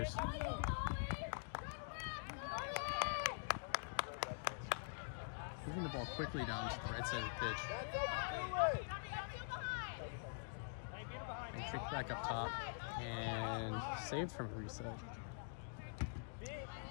Moving the ball quickly down to the right side of the pitch. And kick back up top. And saved from a reset.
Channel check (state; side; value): silent; right; digital silence